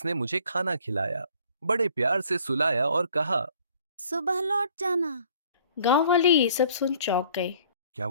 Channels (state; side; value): inverted; both; correlation -0.56